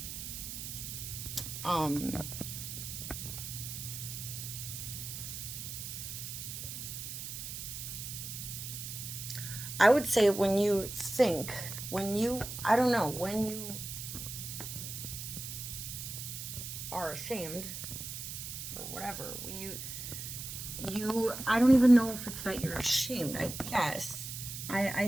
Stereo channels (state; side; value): noise; right; hiss, 7 dB below the sound